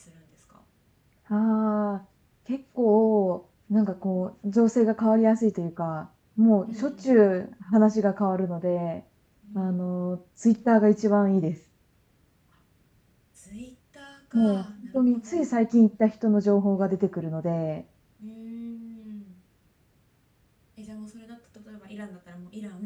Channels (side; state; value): both; identical; correlation 1.00